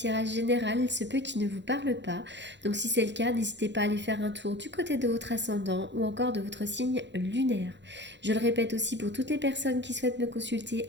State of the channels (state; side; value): late; left; 0.52 ms